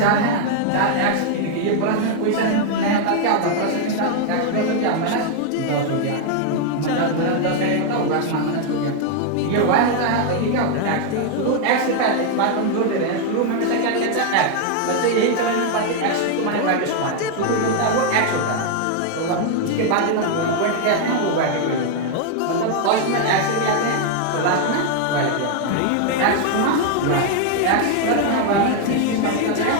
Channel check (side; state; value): both; different; correlation 0.00